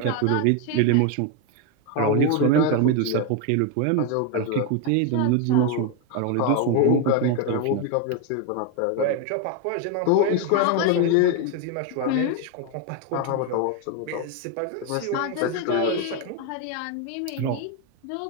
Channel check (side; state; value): both; different; correlation 0.02